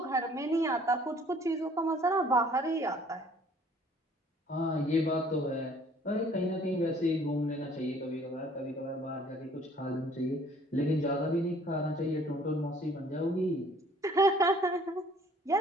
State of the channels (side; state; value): both; normal; correlation 0.57